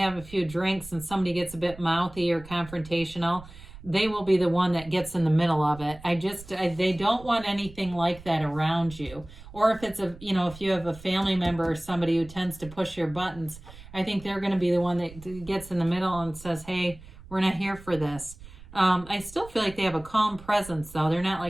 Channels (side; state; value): right; noise; rumble, 18 dB below the sound